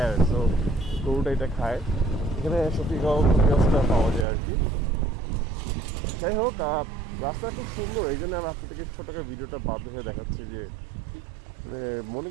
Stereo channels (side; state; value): left; drops out; at 4.2 s